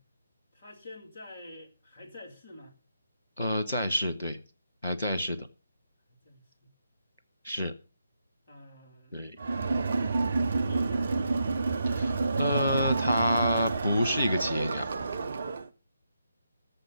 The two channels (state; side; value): inverted; both; correlation -0.83